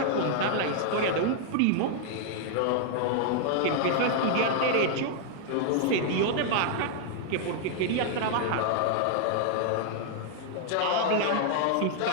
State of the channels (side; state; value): both; different; correlation 0.00